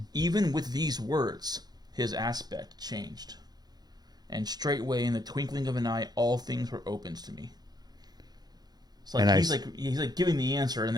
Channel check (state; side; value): late; left; 0.19 ms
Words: even with these words, his aspect changed. And straightway in the twinkling of an eye, all things were opened to me. It's like he's like giving the answer, and